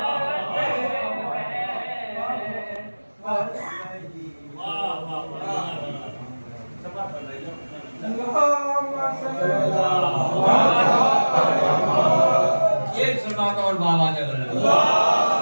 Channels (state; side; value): inverted; both; correlation -1.00